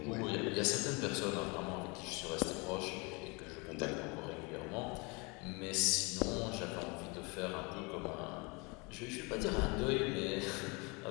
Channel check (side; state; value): right; quieter; 29.1 dB